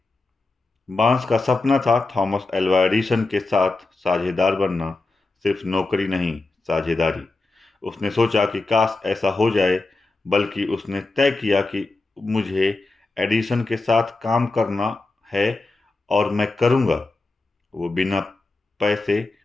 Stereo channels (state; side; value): quieter; right; 3.4 dB